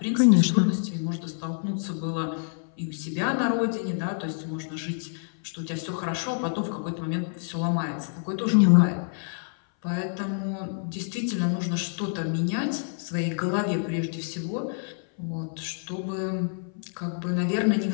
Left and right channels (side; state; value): right; silent; 58 dB below the other